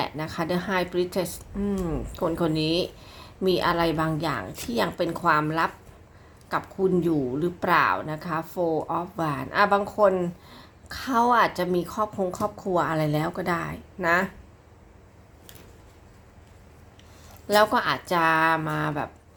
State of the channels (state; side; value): identical; both; correlation 1.00